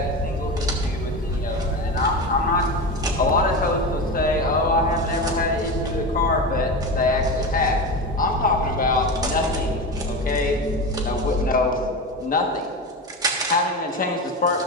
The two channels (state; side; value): normal; both; correlation 0.22